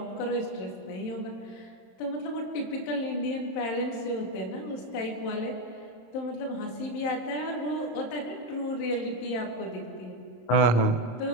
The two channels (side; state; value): right; late; 26 ms